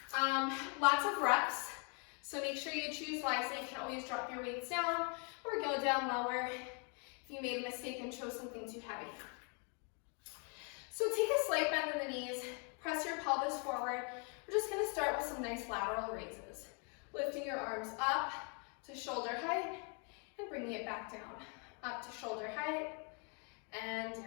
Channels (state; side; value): quieter; right; 37.5 dB